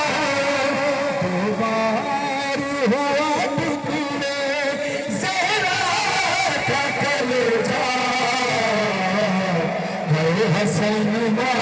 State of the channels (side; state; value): both; identical; correlation 1.00